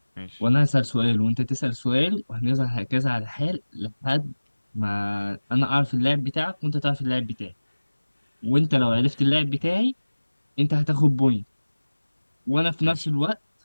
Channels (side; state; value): both; inverted; correlation -1.00